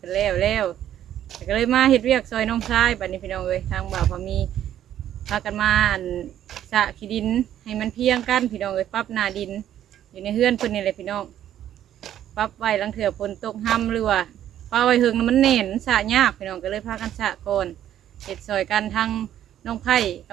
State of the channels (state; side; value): quieter; left; 11.2 dB